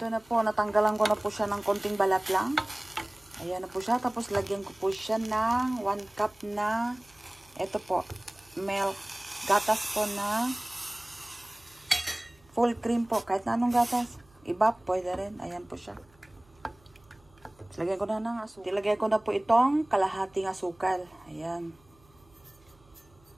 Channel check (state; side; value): noise; right; hum, 30 dB below the sound